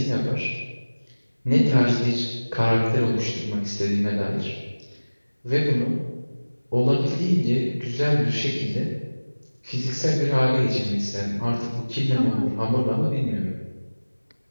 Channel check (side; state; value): both; inverted; correlation -1.00